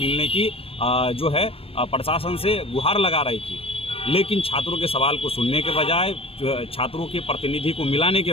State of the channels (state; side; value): late; right; 0.27 ms